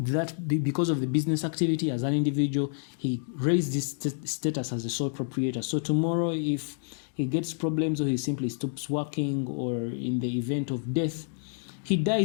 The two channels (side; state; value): right; silent; digital silence